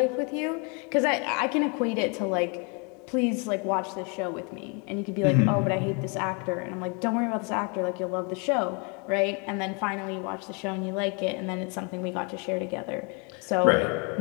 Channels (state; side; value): quieter; right; 34.4 dB